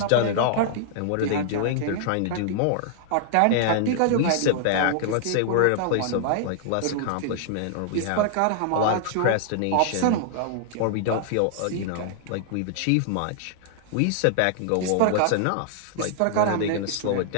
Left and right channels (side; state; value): both; different; correlation -0.01